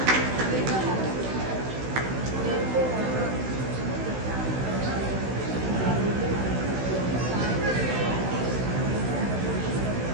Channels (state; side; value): late; left; 16 ms